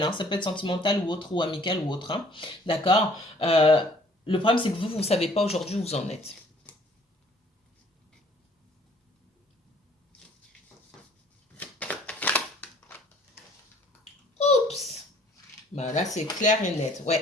hein, ça peut être sentimental ou autre, ou amical ou autre, hein, d'accord? Le problème, c'est que vous ne savez pas aujourd'hui où vous en êtes. Bah, là, c'est clair et net.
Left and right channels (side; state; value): both; normal; correlation 0.57